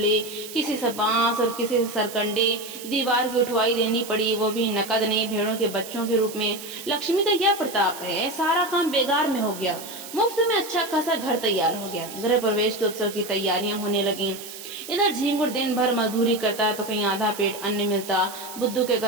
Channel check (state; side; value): noise; right; hiss, 13 dB below the sound